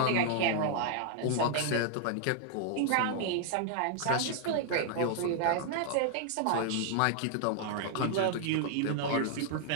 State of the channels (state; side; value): different; both; correlation -0.01